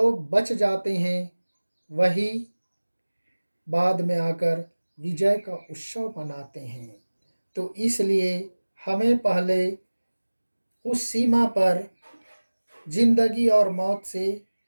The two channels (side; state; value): both; inverted; correlation -1.00